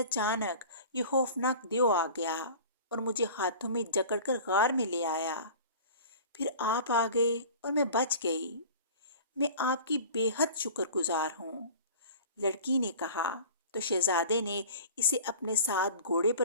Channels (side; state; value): both; inverted; correlation -0.41